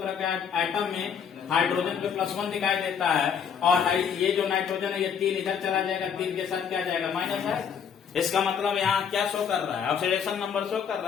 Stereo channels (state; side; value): quieter; right; 7.4 dB